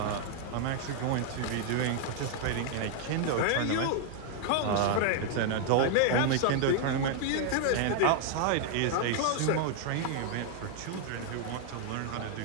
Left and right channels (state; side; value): different; both; correlation 0.00